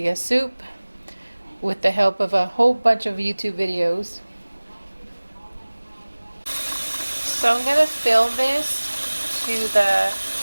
soup with the help of a whole bunch of YouTube videos. So I'm going to fill this to the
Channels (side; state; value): both; inverted; correlation -1.00